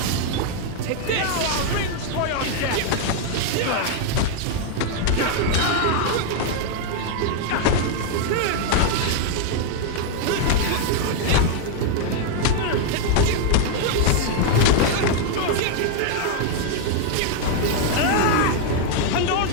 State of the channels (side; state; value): both; different; correlation 0.00